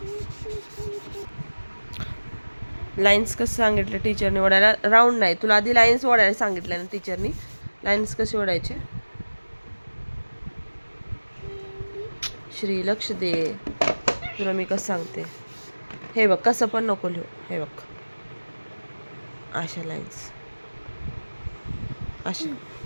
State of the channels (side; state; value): both; inverted; correlation -1.00